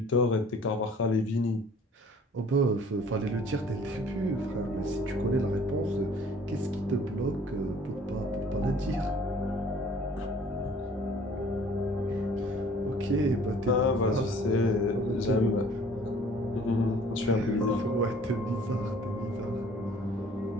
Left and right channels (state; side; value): normal; both; correlation 0.53